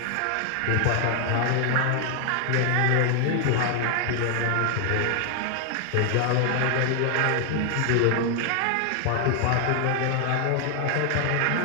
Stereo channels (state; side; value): different; both; correlation 0.00